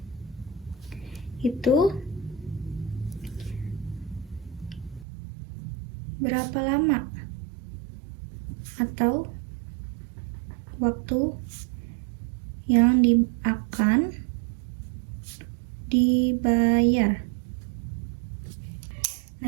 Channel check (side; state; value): left; drops out; at 5.1 s